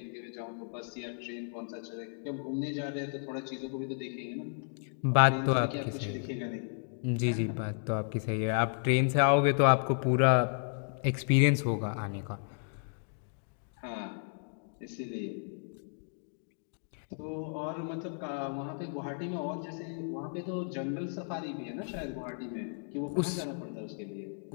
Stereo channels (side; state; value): right; silent; digital silence